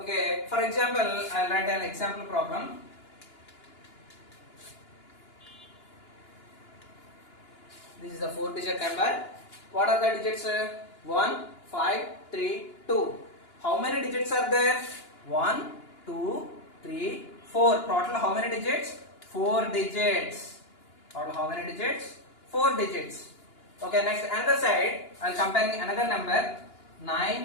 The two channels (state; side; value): late; right; 2.9 ms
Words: for example, I'll write an example problem. This is the 4-digit number. What are the digits? 1, 5, 3, 2. How many digits are there? 1, 2, 3, 4. Total how many digits? 4 digits. Total how many digits? 4 digits. Okay, next another side, I'll compare another number.